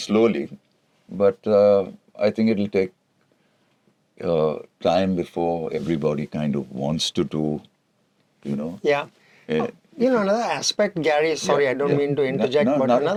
but I think it'll take time before everybody kind of wants to do. Yeah. Another aspect, Gary, sorry, I don't mean to interject, No, but not at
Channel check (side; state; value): both; identical; correlation 1.00